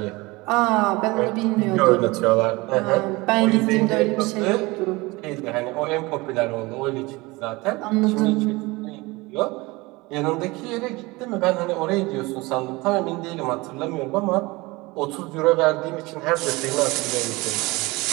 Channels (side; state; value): left; quieter; 22.9 dB